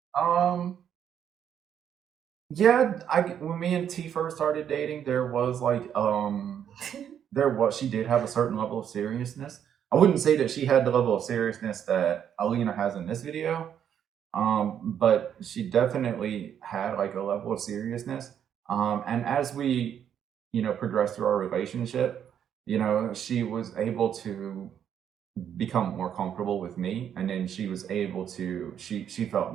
Yeah, when me and T first started dating, there was like she did have a certain level of seriousness. I wouldn't say that she had the level of seriousness that Alina has in this video, but she definitely had like a level of seriousness. And as we, progressed through our relationship, she was able to become more comfortable with me, and then she was able to she felt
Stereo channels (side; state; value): left; quieter; 9.0 dB